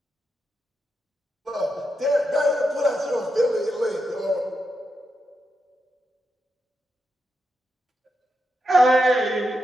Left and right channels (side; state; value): both; normal; correlation 0.85